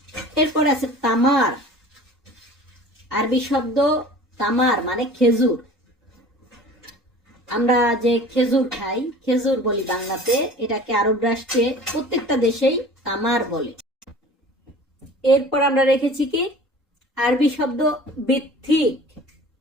এরপর আছে তামার। আরবি শব্দ তামার মানে খেজুর। আমরা যে খেজুর খাই, খেজুর বলি বাংলাতে, এটাকে আরব রাষ্ট্রে প্রত্যেকটা দেশেই তামার বলে। এরপর আমরা রেখেছি কি আরবি শব্দ বিথিক।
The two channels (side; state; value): both; normal; correlation 0.43